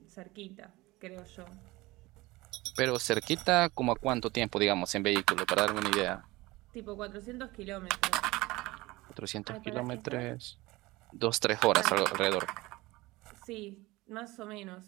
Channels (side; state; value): left; quieter; 20.6 dB